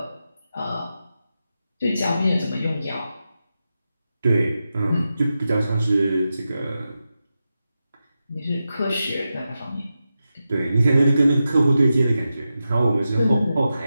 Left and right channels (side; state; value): both; inverted; correlation -0.91